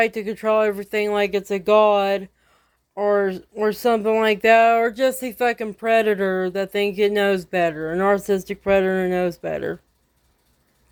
to control everything like it's a god or something like that, or just a fucking predator that thinks it knows better. A narcissistic predator knows better.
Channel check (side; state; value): both; identical; correlation 1.00